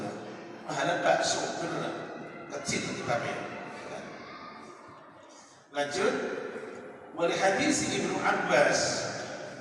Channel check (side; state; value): both; identical; correlation 1.00